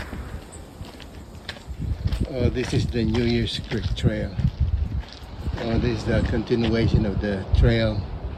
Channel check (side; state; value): both; identical; correlation 1.00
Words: Oh, this is the New Year's Creek Trail. Oh, this is the continuation of the trail.